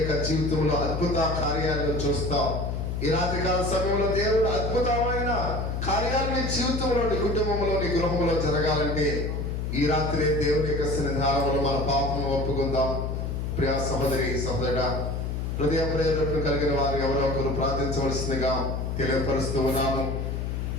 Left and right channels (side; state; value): left; noise; hum, 2 dB below the sound